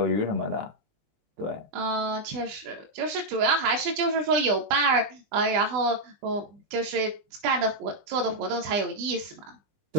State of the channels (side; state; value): left; late; 20 ms